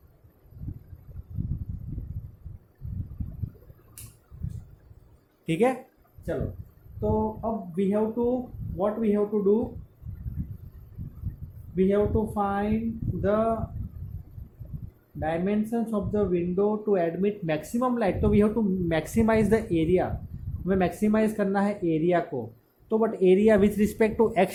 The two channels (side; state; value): both; identical; correlation 1.00